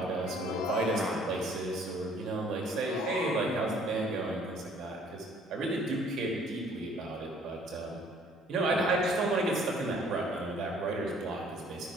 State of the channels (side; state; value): both; normal; correlation 0.58